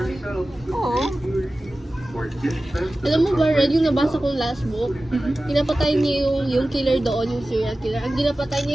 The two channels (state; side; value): normal; both; correlation 0.96